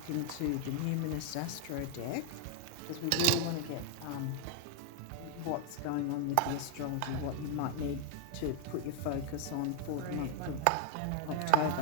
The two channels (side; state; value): both; different; correlation 0.00